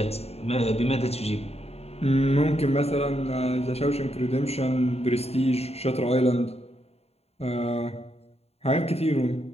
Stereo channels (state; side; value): late; right; 0.30 ms